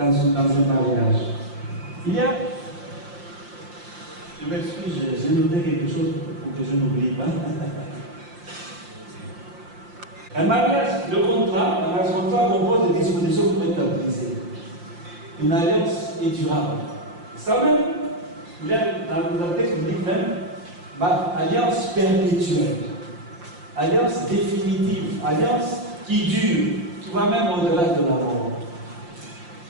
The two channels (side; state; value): left; late; 5.7 ms